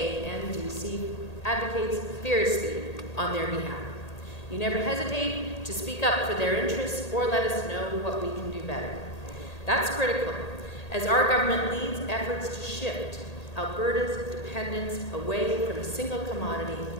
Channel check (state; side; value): late; right; 1.8 ms